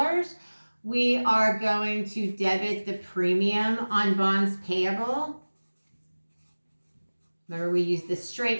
We are going to debit the premium on bonds payable. Remember, we used the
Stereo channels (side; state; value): both; inverted; correlation -1.00